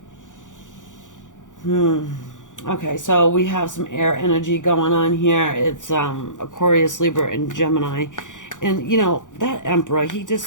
Okay, so we have some air energy going on here. It's Aquarius, Libra, and Gemini. And, you know, that Emperor, he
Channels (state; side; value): late; right; 0.87 ms